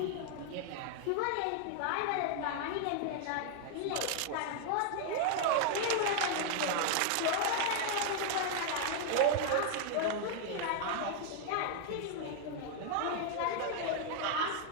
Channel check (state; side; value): different; both; correlation 0.00